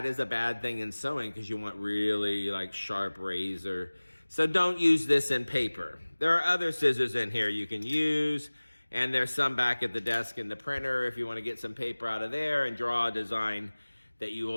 is a bad thing in sewing because you want really like sharp razor. So don't use this in paper. There are other scissors in here you can use. And there's some back at the desk in the printer if you want to get some paper out of there and draw a design that you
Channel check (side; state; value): both; inverted; correlation -1.00